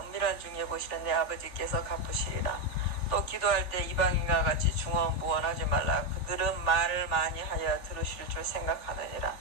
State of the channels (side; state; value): right; late; 3.4 ms